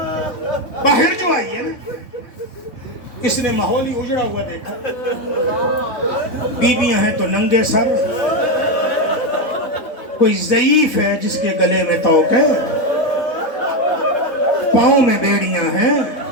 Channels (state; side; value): late; right; 3.6 ms